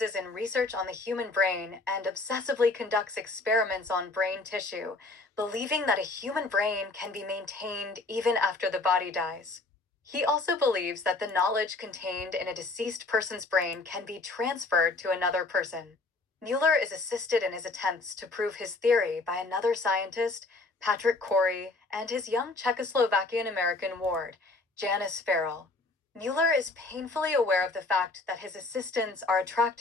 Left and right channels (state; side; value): quieter; right; 3.4 dB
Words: in research on the human brain and obsessively conducts experiments on brain tissue, believing that a human brain can be maintained even after the body dies. He also believes that the knowledge contained in a deceased person's brain can be transferred to another person. Mueller is assisted in his attempts to prove his theory by another scientist, Patrick Corey, and his young Czechoslovakian-American ward, Janice Farrell. Mueller is painfully aware of the fact that his assistants are